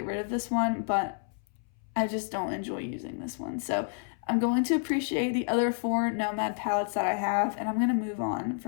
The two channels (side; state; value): right; silent; 58 dB below the other